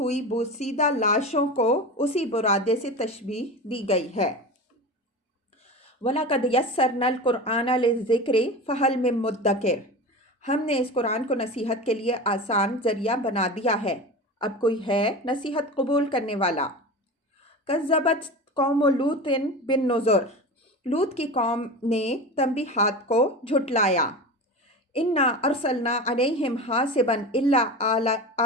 بوسیدہ لاشوں کو اسی برادے سے تشبیہ دی گئی ہے۔ وَلَقَدْ يَسَّرْنَا الْقُرْآنَ لِلذِّكْرِ فَهَلْ مِن مُدَّكِرٍ، ہم نے اس قرآن کو نصیحت کے لیے آسان ذریعہ بنا دیا ہے، اب کوئی ہے نصیحت قبول کرنے والا۔ کذبت قوم لوط بالنذر، لوط کی قوم نے تنبیہات کو جھٹلایا۔ انا ارسلنا علیہم حاصبا الا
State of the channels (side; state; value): both; normal; correlation 0.29